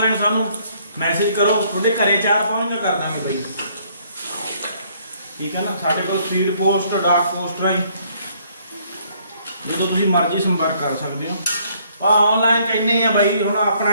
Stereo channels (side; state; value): both; inverted; correlation -0.64